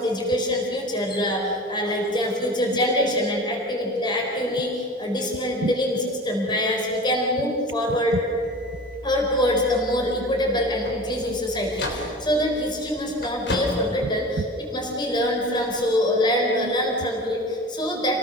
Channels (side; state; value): both; normal; correlation 0.36